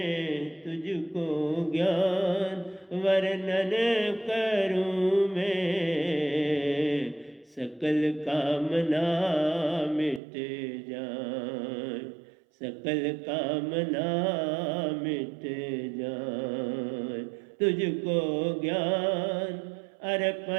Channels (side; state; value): left; drops out; at 10.2 s